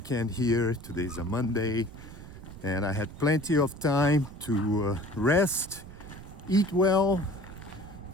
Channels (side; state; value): right; noise; rumble, 15 dB below the sound